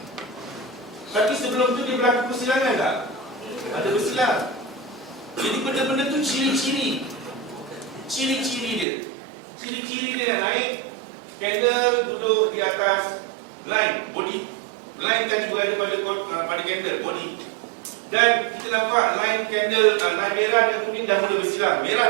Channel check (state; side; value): drops out; left; at 8.8 s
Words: Tapi sebelum tu dia berlaku persilangan tak? Ada bersilang. Jadi benda-benda tu ciri-ciri. Ciri-ciri dia. Ciri-ciri dia nak naik, candle duduk di atas line, body. Line tadi berada pada candle, body. Dan kita nampak line candle, line merah dan kuning dah mula bersilang.